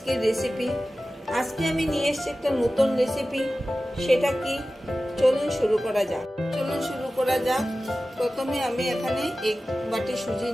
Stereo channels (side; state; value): both; normal; correlation 0.95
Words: রেসিপি। আজকে আমি নিয়ে এসেছি একটা নতুন রেসিপি। সেটা কি, চলুন শুরু করা যাক। প্রথমে আমি এখানে 1 বাটি সুজি